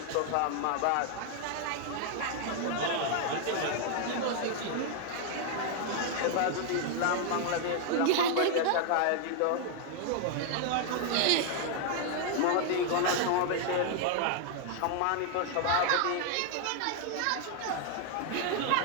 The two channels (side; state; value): both; different; correlation 0.00